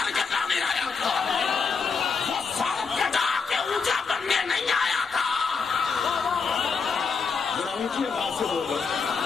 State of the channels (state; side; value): quieter; right; 5.2 dB